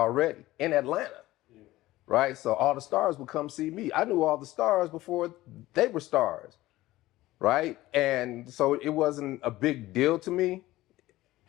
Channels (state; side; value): quieter; right; 17.0 dB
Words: in Atlanta, right? So all the stars would come see me. I knew all the stars before they were stars, right? And so it wasn't a big deal to me,